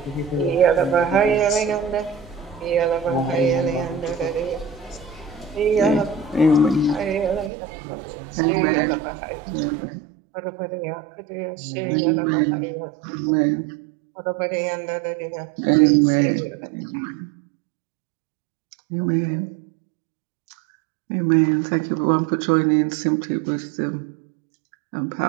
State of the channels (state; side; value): drops out; left; at 7.5 s